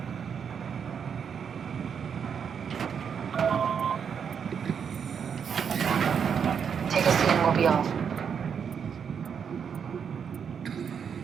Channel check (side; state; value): left; quieter; 7.1 dB